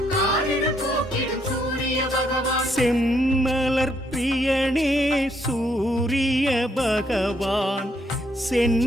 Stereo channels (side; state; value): both; normal; correlation 0.72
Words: காரிருள் போக்கிடும் சூரிய பகவான். செம்மலர் பிரியனே சூரிய பகவான்,